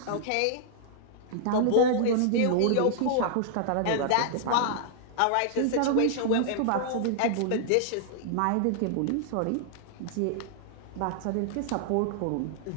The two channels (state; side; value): different; both; correlation -0.01